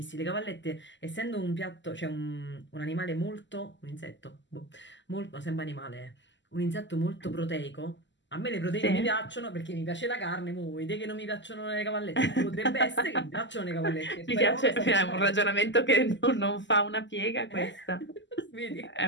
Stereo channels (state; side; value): late; right; 0.54 ms